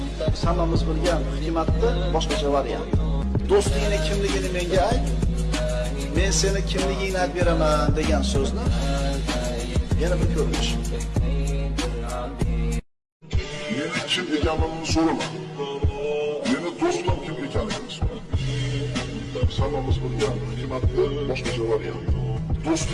Hammamiz bilgan hikmatni boshqacha variant. Do'stingning kimligini menga ayt. Men seni kimligingni aytib beraman degan so'zni yana bir ko'rinish. Meni kim ekanligini so'rama. Meni do'stim kim ekanligini so'ra. Hammamiz bilgan hikmatni boshqacha variant.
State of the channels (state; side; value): identical; both; correlation 1.00